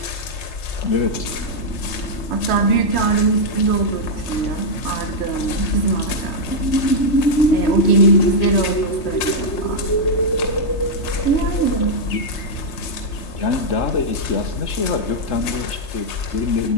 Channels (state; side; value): late; right; 3.3 ms